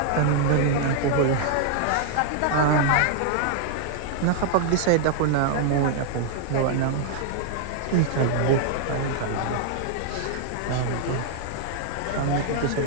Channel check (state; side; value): different; both; correlation 0.00